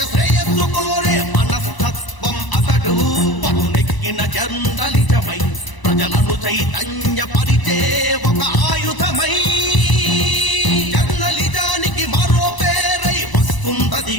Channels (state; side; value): late; right; 1.0 ms